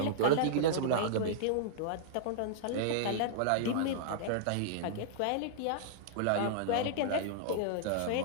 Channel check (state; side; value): different; both; correlation -0.02